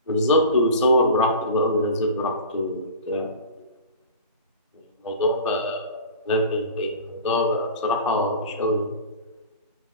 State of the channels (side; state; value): both; inverted; correlation -0.36